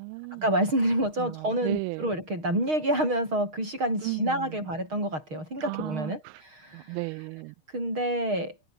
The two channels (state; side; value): late; left; 6.4 ms